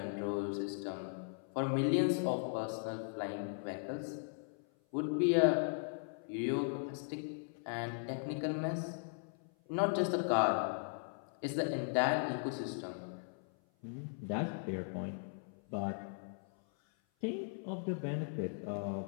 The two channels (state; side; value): silent; right; 52 dB below the other